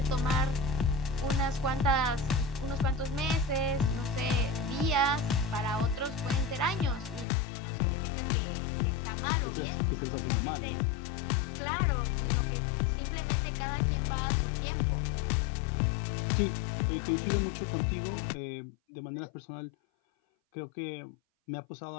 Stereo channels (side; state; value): right; drops out; at 7.2 s